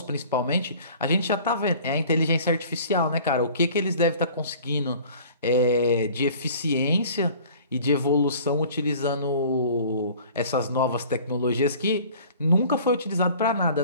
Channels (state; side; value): inverted; both; correlation -0.47